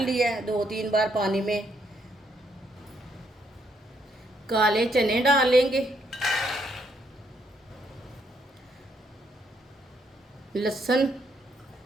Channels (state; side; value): normal; both; correlation 0.73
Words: लिया है 2-3 बार पानी में। काले चने डाल लेंगे। लहसुन